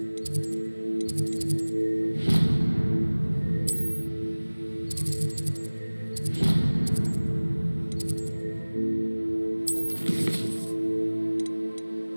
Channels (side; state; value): both; inverted; correlation -1.00